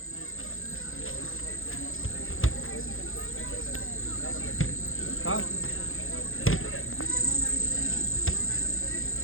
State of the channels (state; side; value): late; right; 0.60 ms